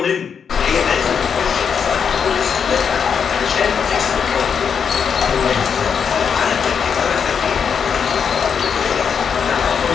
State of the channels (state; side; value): quieter; right; 6.9 dB